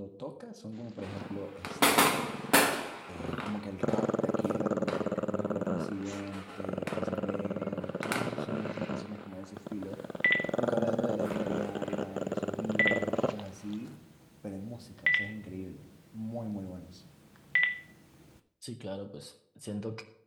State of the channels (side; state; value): both; identical; correlation 1.00